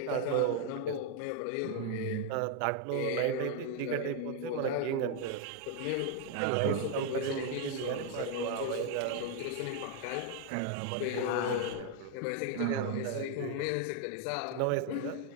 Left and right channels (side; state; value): both; different; correlation 0.01